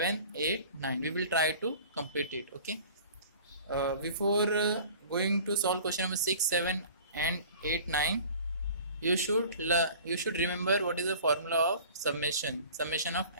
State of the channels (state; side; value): inverted; both; correlation -0.45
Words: 8, 9. We will try to complete it. Okay. Before going to solve question number 6, 7 and 8, 9, you should remember what is the formula of summation of